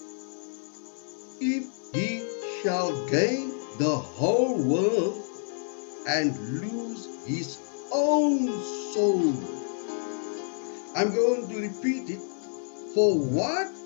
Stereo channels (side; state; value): right; silent; 59 dB below the other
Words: if he shall gain the whole world and lose his own soul? I'm going to repeat it. For what